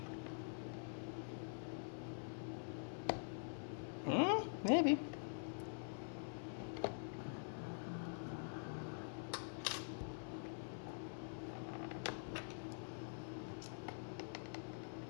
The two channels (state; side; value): silent; right; digital silence